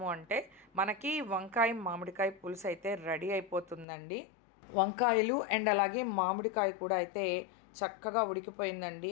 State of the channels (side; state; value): right; drops out; at 3.9 s